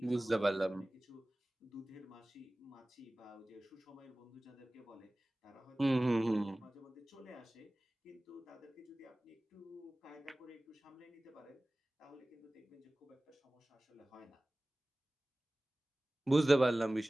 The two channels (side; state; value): both; normal; correlation 0.98